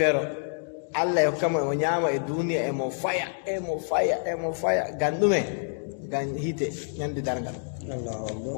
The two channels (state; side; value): silent; right; digital silence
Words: Allah e hokkamo emo ñaama e duniya emo faya ngam ɗume ngam hiite ñande darngal o